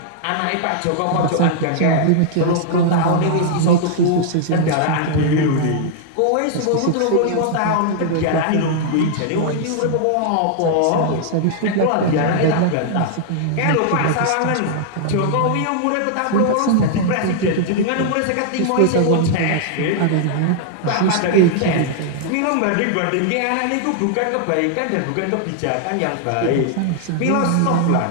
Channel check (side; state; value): both; different; correlation -0.01